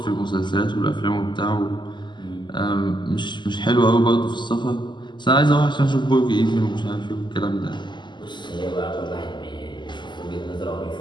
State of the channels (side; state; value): right; late; 0.22 ms